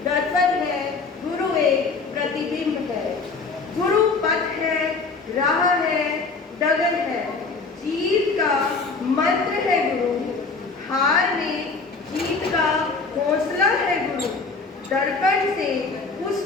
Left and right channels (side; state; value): right; quieter; 4.3 dB